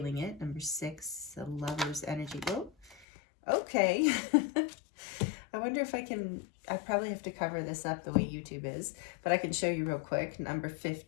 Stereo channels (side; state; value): right; drops out; at 3.1 s